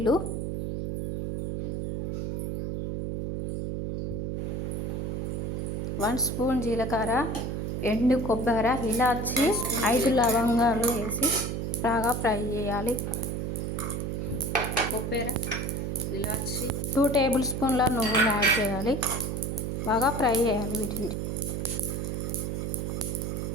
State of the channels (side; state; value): right; noise; hum, 2 dB below the sound